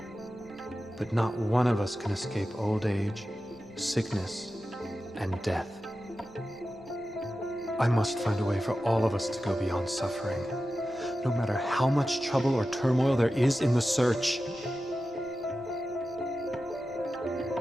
But not one of us can escape old age, sickness, and death. I must find a way for all of us to go beyond suffering, no matter how much trouble or turmoil there is in the search.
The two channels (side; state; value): left; noise; rumble, 27 dB below the sound